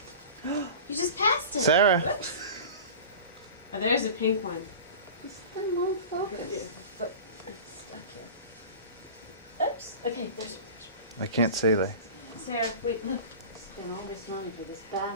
You just passed it. Sarah. Oh, there's a pink one. Then won't focus. But it's stuck here. Oops. Okay, there's I can't see that. Sarah, wait, look. Spend all this money for this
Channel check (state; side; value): inverted; both; correlation -0.35